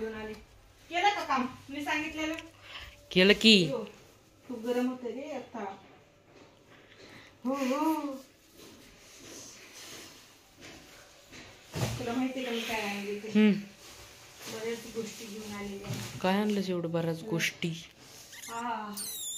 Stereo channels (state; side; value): identical; both; correlation 1.00